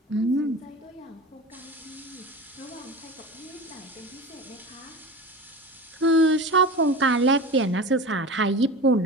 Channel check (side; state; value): both; normal; correlation 0.31